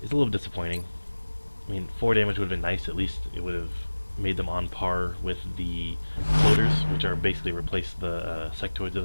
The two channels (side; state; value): both; inverted; correlation -1.00